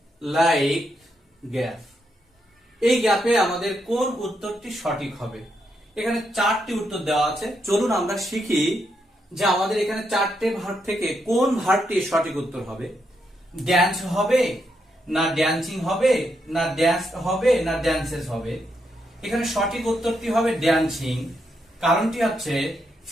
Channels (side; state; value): both; normal; correlation 0.80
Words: like gap. এই গ্যাপে আমাদের কোন উত্তরটি সঠিক হবে? এখানে চারটি উত্তর দেওয়া আছে। চলুন আমরা শিখি যে আমাদের এখানে চারটে ভার্ব থেকে কোন ভার্বটি সঠিক উত্তর হবে। ড্যান্স হবে, না ড্যান্সিং হবে, না ড্যান্স হবে, না ড্যান্সেস হবে। এখানে সঠিক উত্তরটি হবে ড্যান্সিং। কারণটি হচ্ছে